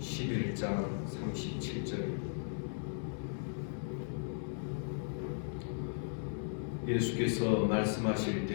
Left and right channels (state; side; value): silent; right; digital silence